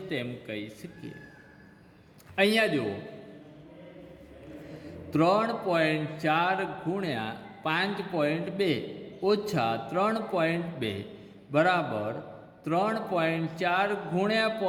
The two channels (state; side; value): identical; both; correlation 1.00